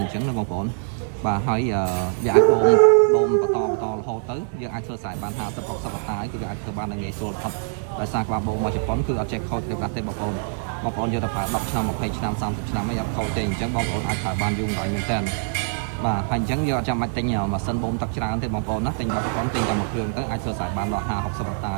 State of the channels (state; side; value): silent; left; digital silence